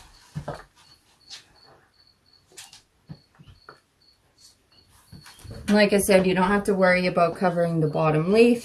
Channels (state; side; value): identical; both; correlation 1.00